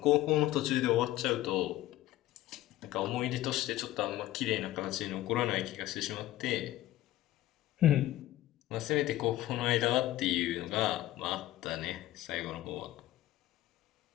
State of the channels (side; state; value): right; quieter; 15.2 dB